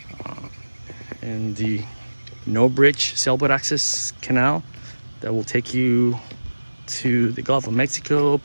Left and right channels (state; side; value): inverted; both; correlation -1.00